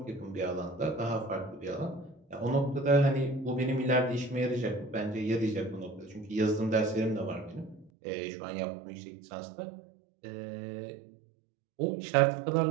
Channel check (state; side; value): drops out; left; at 7.9 s